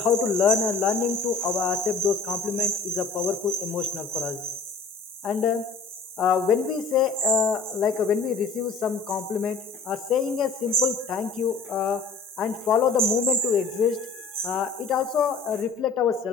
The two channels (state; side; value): quieter; right; 4.5 dB